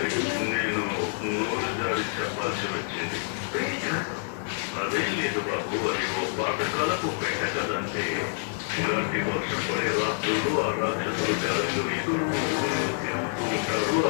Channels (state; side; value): silent; right; digital silence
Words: నేను నోరు జారి చెప్పాల్సి వచ్చింది. అదేం లేదు బాబు, అది ఓ పాతకాలపు పెట్ట కదంటే. ఇలాంటి వర్షం పడే రాత్రుల్లో ఆ రాక్షసులు గాలిలో ఎగురుతూ తిరుగుతూ ఉంటారు.